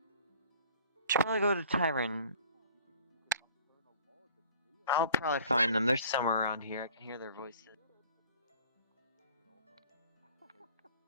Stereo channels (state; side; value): inverted; both; correlation -0.52